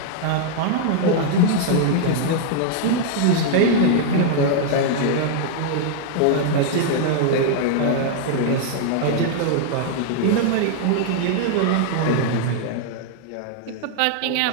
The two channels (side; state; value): both; different; correlation -0.01